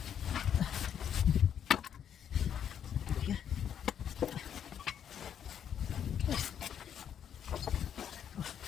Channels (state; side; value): quieter; right; 8.9 dB